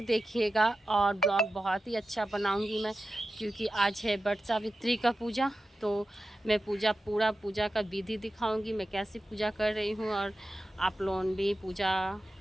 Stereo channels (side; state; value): both; normal; correlation 0.92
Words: देखिएगा और ब्लॉग बहुत ही अच्छा बनाऊँगी मैं, क्योंकि आज है वट सावित्री का पूजा। तो मैं पूजा का विधि दिखाऊंगी, मैं कैसे पूजा कर रही हूँ और आप लोग भी पूजा